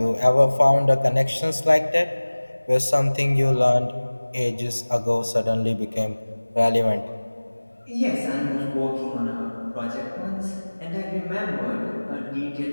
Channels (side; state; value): both; inverted; correlation -1.00